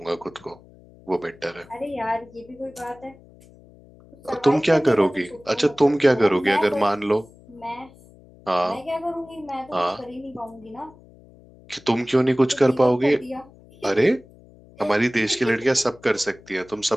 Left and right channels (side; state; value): left; noise; hum, 24 dB below the sound